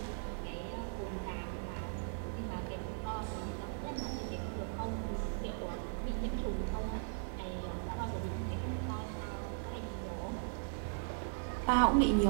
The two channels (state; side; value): silent; left; digital silence